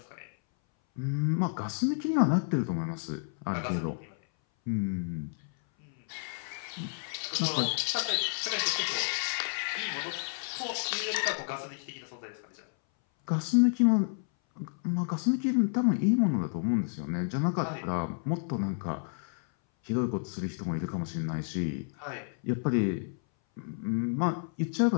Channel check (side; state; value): right; silent; 57 dB below the other